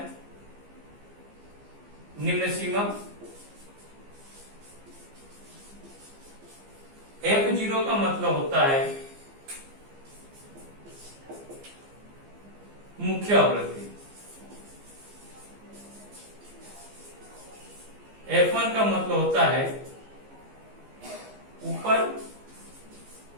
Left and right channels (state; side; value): late; left; 15 ms